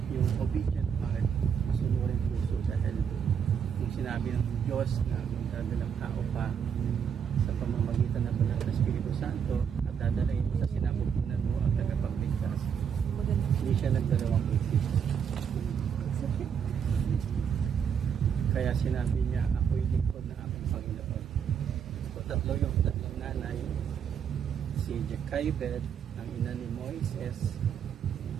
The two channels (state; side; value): quieter; left; 7.5 dB